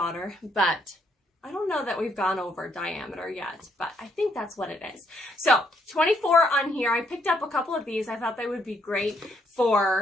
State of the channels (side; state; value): both; normal; correlation 0.72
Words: but I don't know that we've gone over diameter yet, but I think that's what it is. So 24 on here. I picked up a couple of these. I thought they would be great